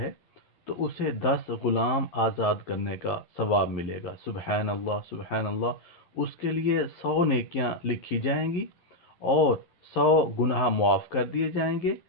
तो उसे 10 ग़ुलाम आज़ाद करने का सवाब मिलेगा। सुबहान अल्लाह सुबहान अल्लाह। उसके लिए 100 नेकियां लिखी जाएंगी और 100 गुनाह मुआफ़ कर दिए जाएंगे।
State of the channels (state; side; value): late; right; 11 ms